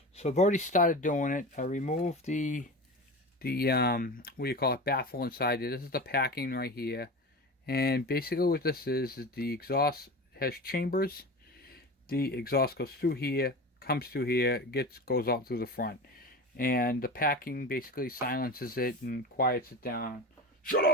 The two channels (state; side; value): normal; both; correlation 0.29